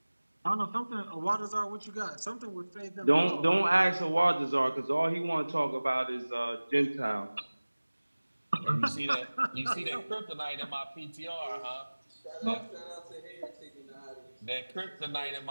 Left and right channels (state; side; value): inverted; both; correlation -1.00